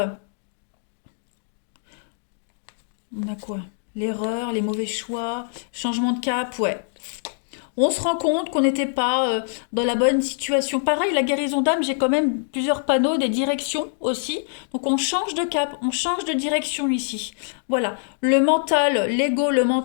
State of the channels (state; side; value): silent; right; digital silence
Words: on a quoi? L'erreur, les mauvais choix, changement de cap, ouais. On se rend compte qu'on n'était pas dans la bonne situation. Pareil, la guérison d'âme, j'ai quand même plusieurs panneaux, des directions aussi. Donc on change de cap, on change de direction ici. Voilà, le mental, l'ego, le